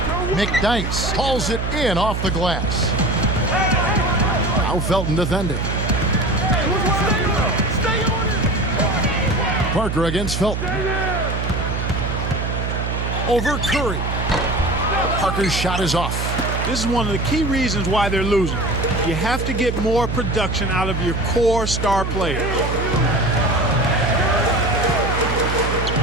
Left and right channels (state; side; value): noise; right; hum, 2 dB below the sound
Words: McDyess hauls it in off the glass. Now Felton defending. Parker against Felton. Over Curry. Parker's shot is off. This is one of the key reasons why they're losing. You have to get more production out of your core star players.